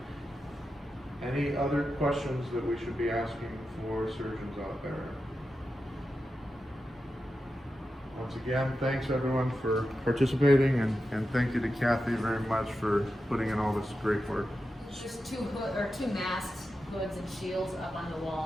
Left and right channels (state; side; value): normal; both; correlation 0.90